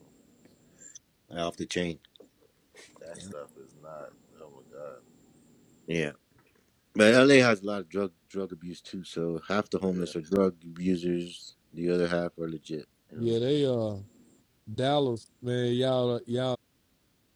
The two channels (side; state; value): both; identical; correlation 1.00